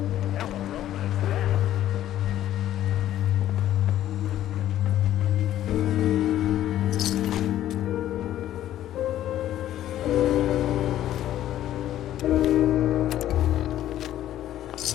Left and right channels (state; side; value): quieter; right; 12.5 dB